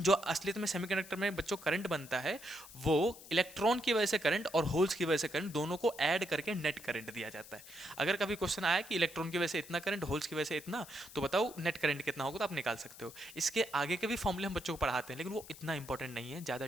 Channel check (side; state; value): left; noise; hiss, 17 dB below the sound